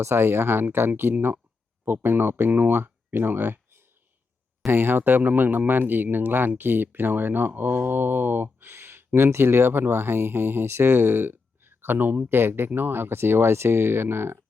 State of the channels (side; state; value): right; quieter; 4.3 dB